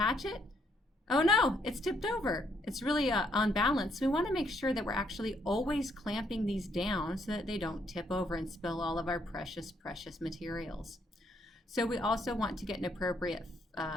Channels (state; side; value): normal; both; correlation 0.72